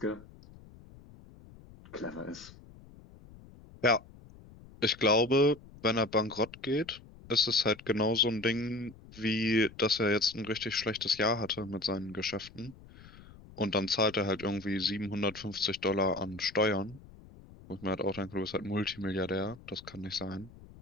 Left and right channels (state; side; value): noise; left; rumble, 20 dB below the sound